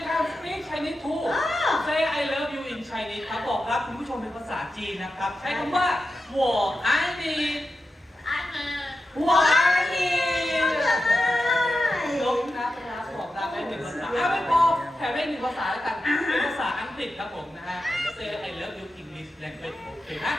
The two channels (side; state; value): both; normal; correlation 0.91